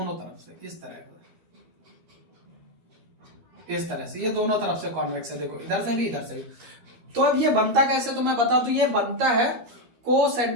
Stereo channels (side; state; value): left; late; 13 ms